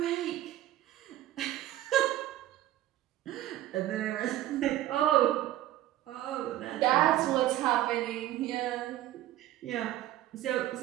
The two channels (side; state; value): left; quieter; 14.1 dB